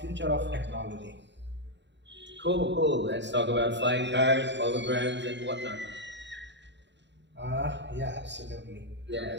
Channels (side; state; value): left; late; 0.52 ms